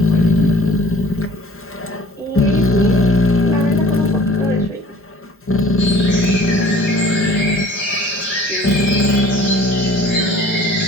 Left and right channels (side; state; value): both; normal; correlation 0.50